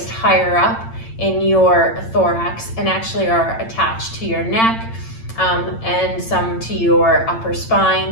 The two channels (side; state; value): right; late; 8.9 ms